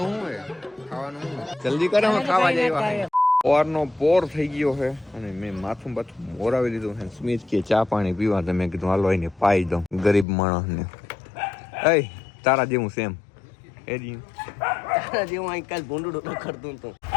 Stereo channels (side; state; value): right; drops out; at 10.2 s